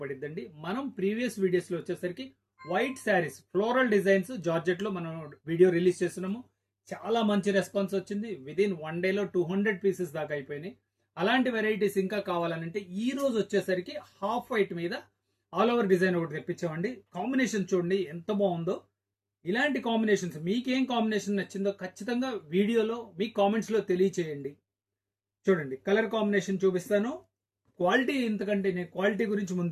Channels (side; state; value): both; identical; correlation 1.00